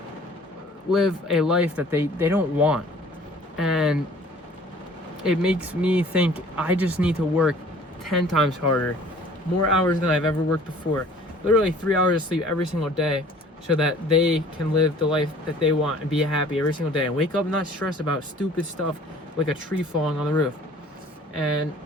live a life that they don't want. And it makes me think I just need to work 10 times harder, more hours than I've ever worked before, literally 3 hours of sleep every single day, so that they can live the life that they want and be happy every single day and wake up not stressed about stupid stuff like a tree falling on the roof. And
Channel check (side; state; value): both; normal; correlation 0.51